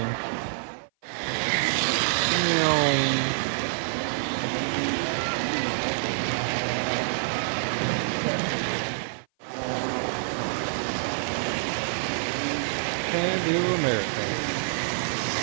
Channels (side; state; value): left; silent; 56 dB below the other